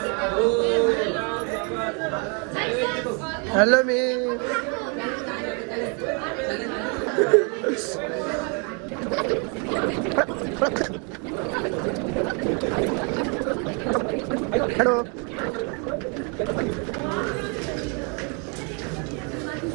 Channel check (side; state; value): left; quieter; 36.0 dB